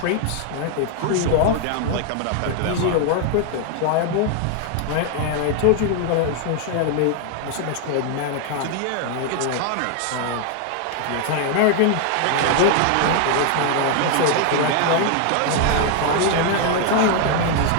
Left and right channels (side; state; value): both; different; correlation 0.00